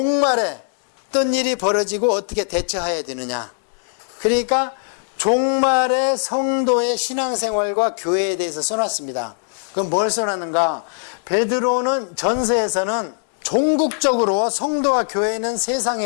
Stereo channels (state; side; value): silent; right; digital silence